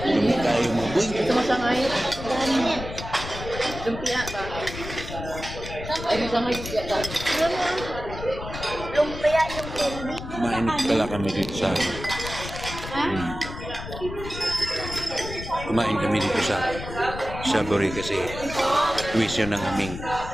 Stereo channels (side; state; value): left; noise; rumble, 10 dB below the sound